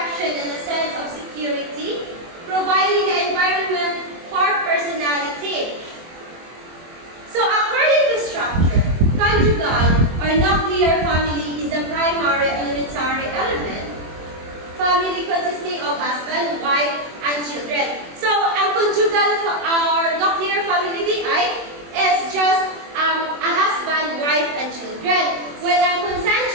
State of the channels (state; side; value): late; left; 24 ms